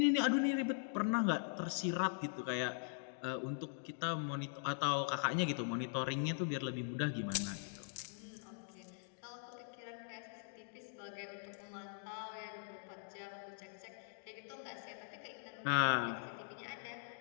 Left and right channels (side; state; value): right; silent; digital silence